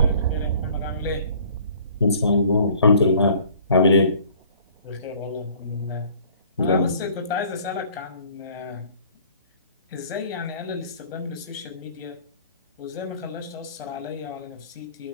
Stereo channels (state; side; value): inverted; both; correlation -0.53